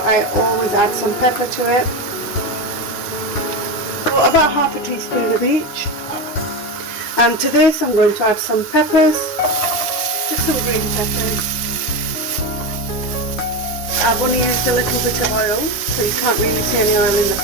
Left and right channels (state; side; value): late; right; 9.7 ms